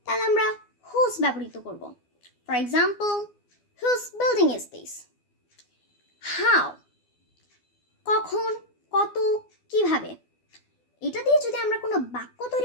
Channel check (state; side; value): late; right; 12 ms